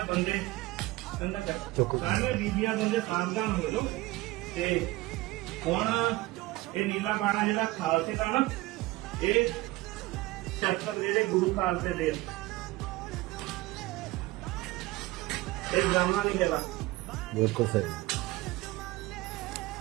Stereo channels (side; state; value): left; quieter; 19.3 dB